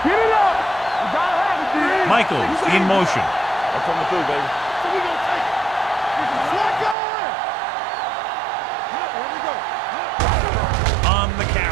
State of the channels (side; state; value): left; drops out; at 7.0 s